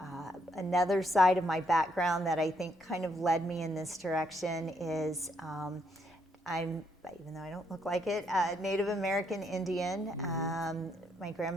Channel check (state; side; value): normal; both; correlation 0.74